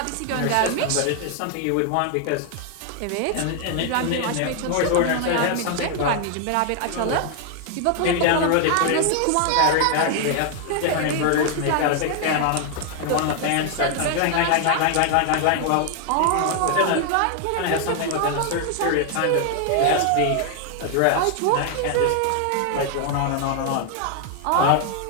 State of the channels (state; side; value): different; both; correlation 0.00